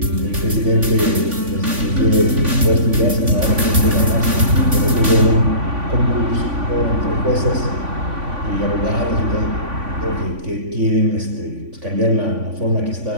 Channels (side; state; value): left; late; 3.5 ms